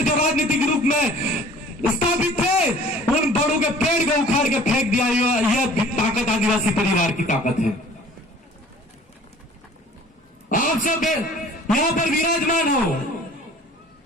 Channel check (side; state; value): both; normal; correlation 0.49